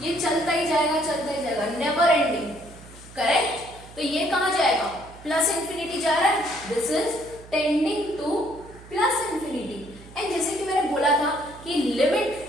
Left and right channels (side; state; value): right; noise; hum, 19 dB below the sound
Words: ये चलता ही जाएगा, नेवर एंडिंग. करेक्ट. तो ये कहां जाएगा, प्लस इंफिनिटी जा रहा है. This is tending two plus infinity. And जैसे कि मैंने बोला था कि लिमिट